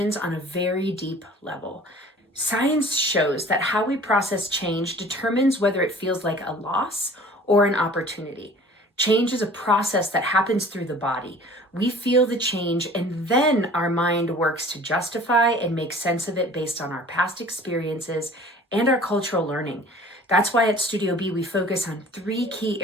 on a very deep level. Science shows that how we process change determines whether it feels like a loss or an opportunity. Change is a process that happens through the body. We feel the change and then our mind works to justify and make sense of it based on our past experiences and our cultural learning. That's why at Studio B, we focus on 3 key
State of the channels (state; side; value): normal; both; correlation 0.47